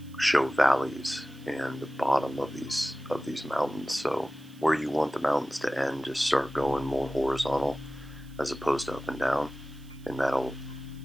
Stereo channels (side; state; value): right; noise; hiss, 27 dB below the sound